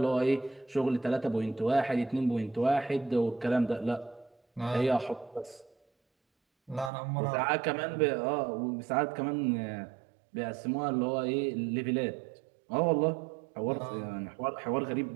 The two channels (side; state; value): left; drops out; at 6.9 s